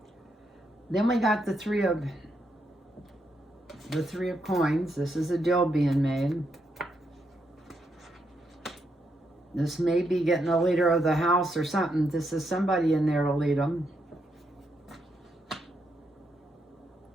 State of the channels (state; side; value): normal; both; correlation 0.80